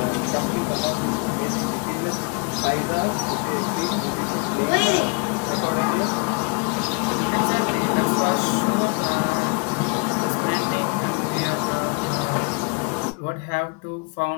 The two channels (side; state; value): right; quieter; 33.8 dB